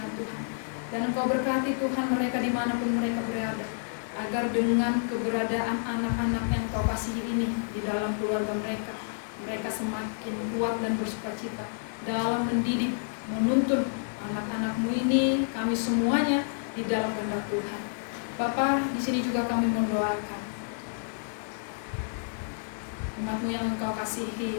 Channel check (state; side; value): silent; right; 58 dB below the other